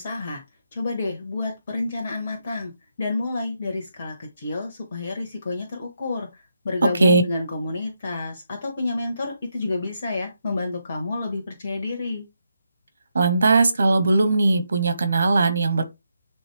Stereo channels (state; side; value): inverted; both; correlation -0.81